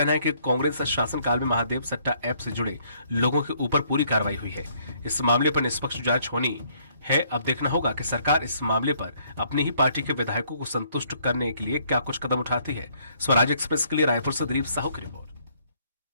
है कि कांग्रेस शासनकाल में महादेव सट्टा ऐप से जुड़े लोगों के ऊपर पूरी कार्रवाई हुई है। इस मामले पर निष्पक्ष जांच होनी है। अब देखना होगा कि सरकार इस मामले पर अपनी ही पार्टी के विधायकों को संतुष्ट करने के लिए क्या कुछ कदम उठाती है। स्वराज एक्सप्रेस के लिए रायपुर से दिलीप साहू की रिपोर्ट।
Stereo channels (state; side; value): inverted; both; correlation -0.66